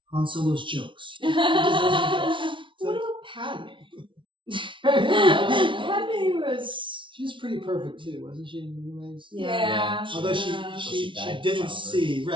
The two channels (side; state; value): left; late; 0.25 ms